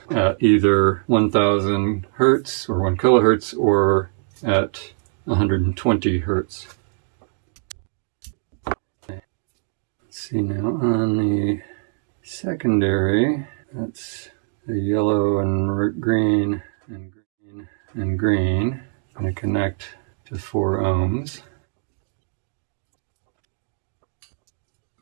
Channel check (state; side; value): silent; left; digital silence